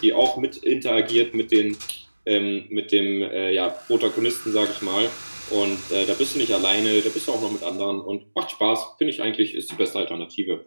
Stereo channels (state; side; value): inverted; both; correlation -1.00